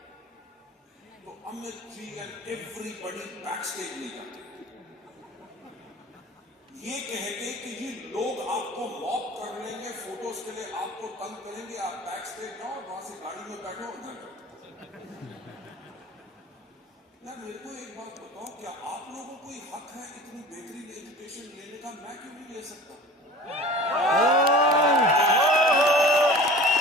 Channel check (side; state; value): both; normal; correlation 0.40